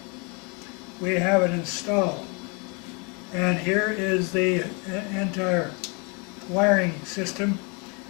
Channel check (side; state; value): right; quieter; 32.5 dB